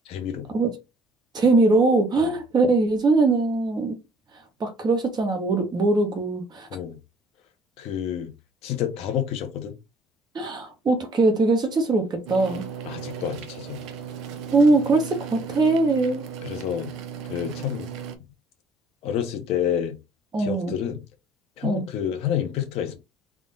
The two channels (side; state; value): both; normal; correlation 0.58